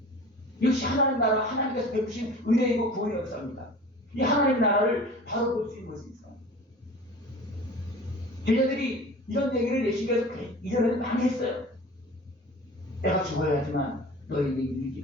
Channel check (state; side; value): normal; both; correlation 0.40